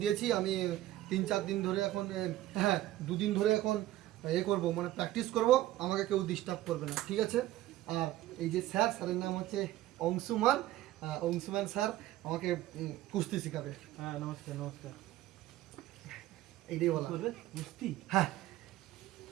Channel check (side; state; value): left; quieter; 15.0 dB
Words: দিয়েছি। আমি 3-4 দিন ধরে এখন হ্যাঁ 2 দিন ধরে এখন করব মানে প্র্যাকটিস করব, আমাকে কেউ ডিস্টার্ব করবে না, ঠিক আছে? আর এই যে স্যারের নাম হচ্ছে অংশুমান। অংশুমান স্যার আমাকে কুস্তি শেখাবে। হ্যাঁ নমস্কার নমস্কার। এইটাই বলা করবে কুস্তি? হ্যাঁ